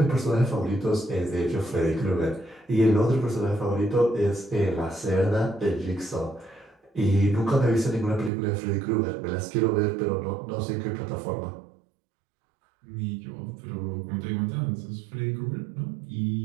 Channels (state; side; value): drops out; left; at 8.3 s